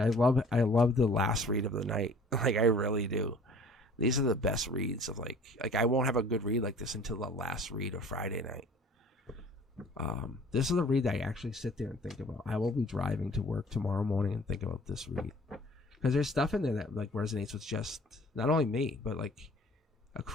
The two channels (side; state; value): both; normal; correlation 0.51